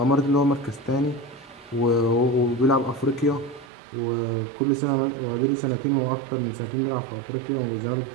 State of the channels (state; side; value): drops out; left; at 3.7 s